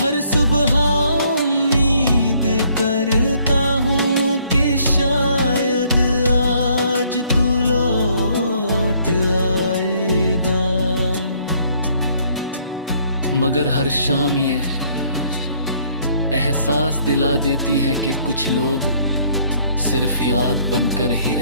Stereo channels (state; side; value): inverted; both; correlation -0.64